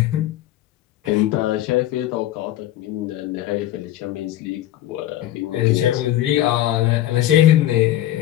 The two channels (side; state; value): right; quieter; 13.4 dB